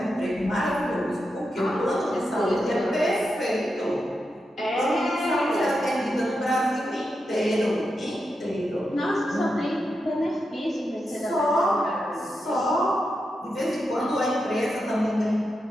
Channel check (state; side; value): normal; both; correlation 0.87